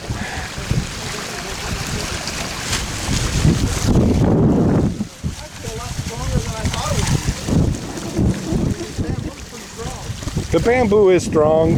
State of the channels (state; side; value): identical; both; correlation 1.00